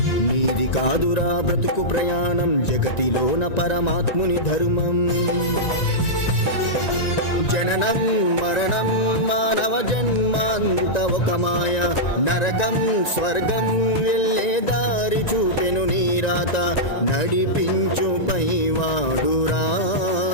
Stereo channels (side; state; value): right; late; 1.9 ms